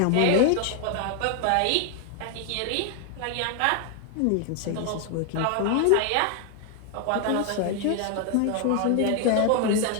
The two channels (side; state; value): both; different; correlation 0.00